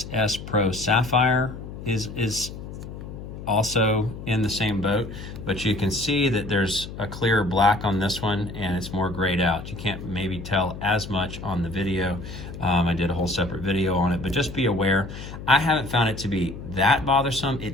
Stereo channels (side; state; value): left; noise; hum, 11 dB below the sound